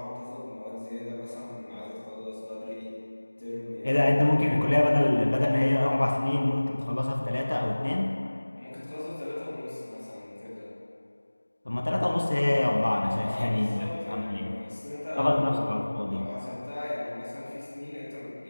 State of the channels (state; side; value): inverted; both; correlation -1.00